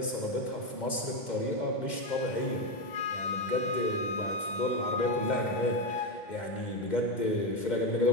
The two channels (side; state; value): right; late; 2.1 ms